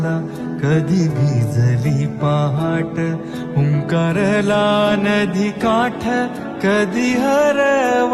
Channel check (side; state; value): both; identical; correlation 1.00